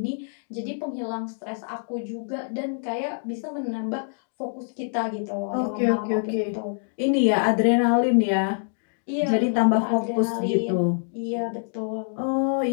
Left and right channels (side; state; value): right; silent; digital silence